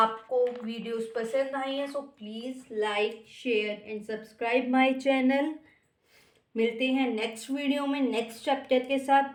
वीडियोस पसंद आई हैं so please like share and subscribe my channel. मिलते हैं नेक्स्ट वीडियो में नेक्स्ट चैप्टर के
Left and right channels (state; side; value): identical; both; correlation 1.00